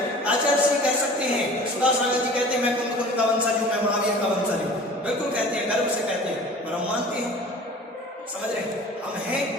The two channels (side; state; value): both; normal; correlation 0.42